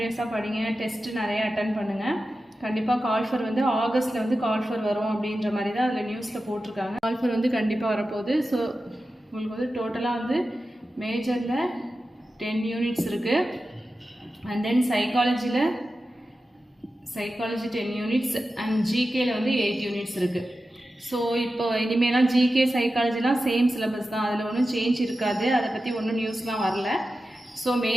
படிங்க, டெஸ்ட்டு நிறைய அட்டன் பண்ணுங்கள். கண்டிப்பாக கால்ஃபர் வந்து ஆகஸ்ட்டில் வந்து கால்ஃபர் வரும் அப்படின்ற மாதிரி தான் அதில் நியூஸில் போட்டிருக்காங்க. கால்ஃபர் வந்து கண்டிப்பாக வரப்போகுது. ஸோ உங்களுக்கு வந்து டோட்டலாக வந்து மேஜரில் 10 யூனிட்ஸ் இருக்குது. And then psychology 10 units and ஜிகேயில் வந்து 8 யூனிட்ஸ் இருக்குது. ஸோ இப்போ இனிமேலாம் ஜிகே சைக்காலஜிலாம் சேம் சிலபஸ் தான், அதில் ஒன்றும் சேஞ்ச் இருக்காது. அதை பற்றி ஒன்றும் நியூஸ்லாம் வரல. ஸோ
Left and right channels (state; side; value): normal; both; correlation 0.93